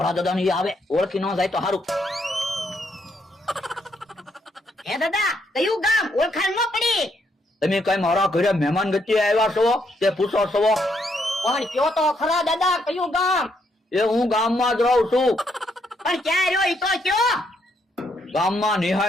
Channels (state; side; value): normal; both; correlation 0.75